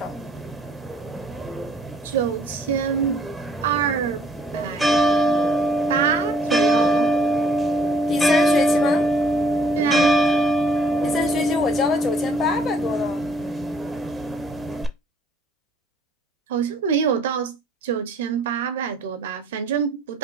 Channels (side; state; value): both; normal; correlation 0.61